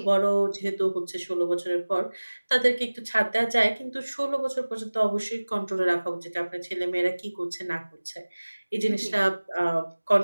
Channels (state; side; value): inverted; both; correlation -1.00